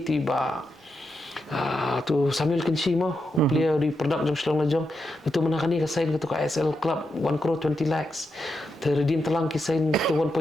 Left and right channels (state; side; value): normal; both; correlation 0.85